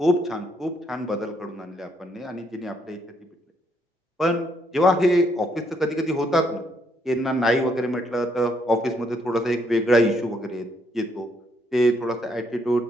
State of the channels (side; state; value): both; normal; correlation 0.72